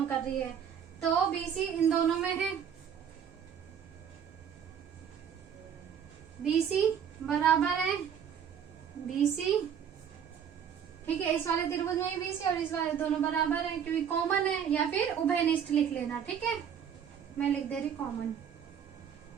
कर रही है। तो BC इन दोनों में है, BC बराबर है BC, ठीक है। इस वाले त्रिभुज में BC और इस वाले दोनों बराबर है, क्योंकि कॉमन है, या फिर उभयनिष्ठ लिख लेना, ठीक है। मैं लिख दे रही कॉमन।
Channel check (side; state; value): left; quieter; 8.1 dB